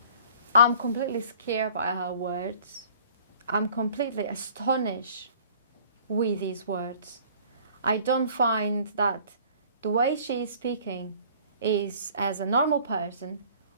I'm completely scared by her words. I'm completely astonished with these words. I don't find that the way she is speaking is as a normal person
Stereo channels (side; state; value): both; inverted; correlation -0.52